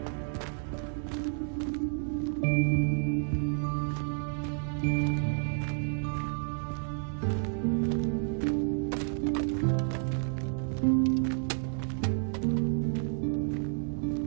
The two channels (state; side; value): silent; left; 57 dB below the other